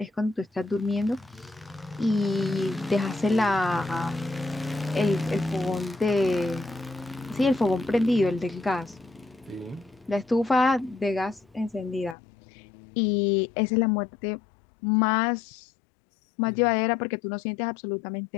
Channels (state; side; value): drops out; right; at 12.2 s